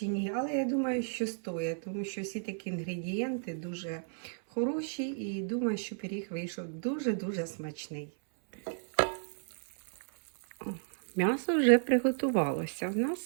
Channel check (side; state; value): left; silent; 56 dB below the other